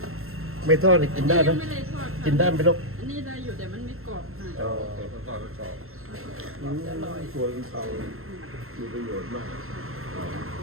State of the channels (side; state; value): left; late; 0.62 ms